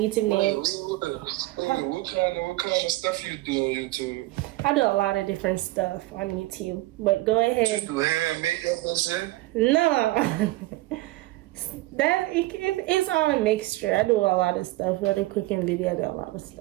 name. What kind of stuff you do on YouTube? I do a lot of different stuff on YouTube. But go ahead. You do hair and makeup and shit? No. It's all a mixture. I do a lot of stuff. I do cooking video. I do a lot of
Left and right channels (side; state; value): left; quieter; 18.9 dB